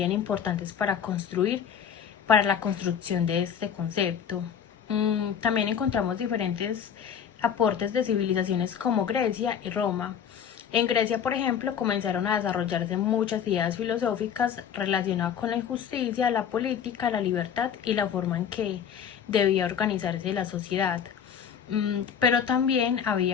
importantes para la construcción de este concepto. También encontramos diferentes aportes de civilizaciones como Grecia y Roma. En Grecia, por ejemplo, comenzaron a desarrollarse muchas ideas filosóficas relacionadas con la injusticia, la política, la libertad y la forma en que debía organizarse la sociedad. Pero también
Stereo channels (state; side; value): quieter; right; 8.2 dB